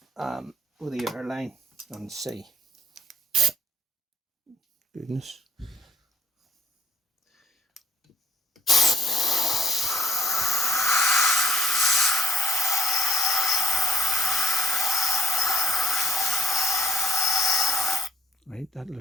with the airline and see. Goodness. Right, that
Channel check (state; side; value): normal; both; correlation 0.67